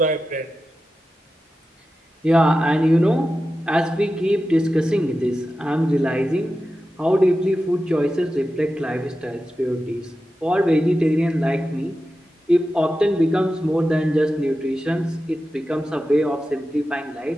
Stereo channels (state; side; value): normal; both; correlation 0.92